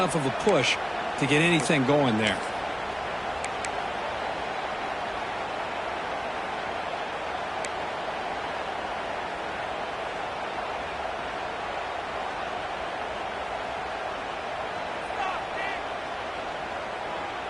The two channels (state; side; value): identical; both; correlation 1.00